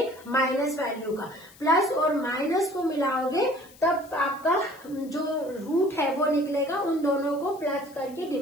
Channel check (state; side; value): noise; left; hiss, 24 dB below the sound